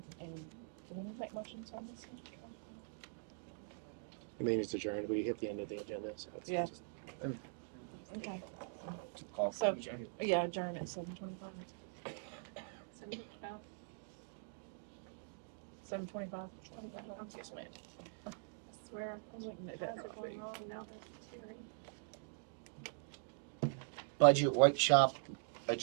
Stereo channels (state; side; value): silent; left; digital silence